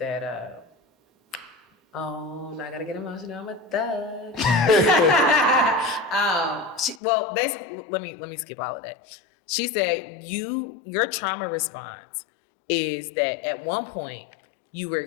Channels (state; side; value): drops out; right; at 7.0 s